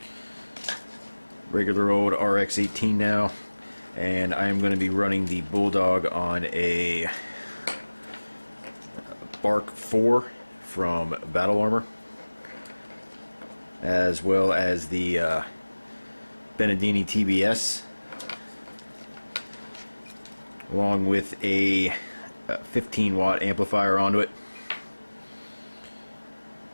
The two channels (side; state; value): both; inverted; correlation -1.00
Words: regular old RX-18 now. And I am going to be running the bulldog on a Bark 4 from Battle Armor, as well as the Benedini TBS, along with a 15-watt amplifier onto it,